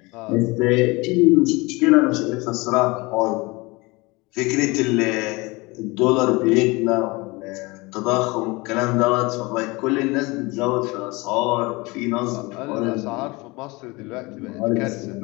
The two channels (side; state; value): right; quieter; 24.3 dB